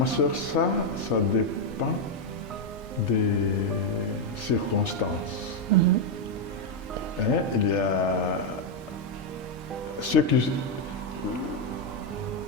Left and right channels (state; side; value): normal; both; correlation 0.02